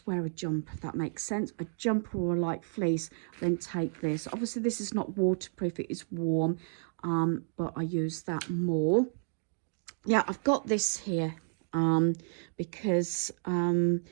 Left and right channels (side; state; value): left; silent; digital silence